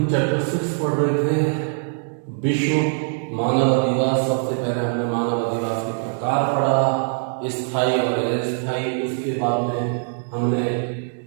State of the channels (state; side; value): silent; left; digital silence